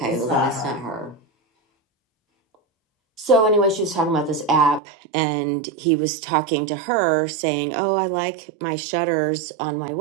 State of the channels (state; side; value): drops out; left; at 4.8 s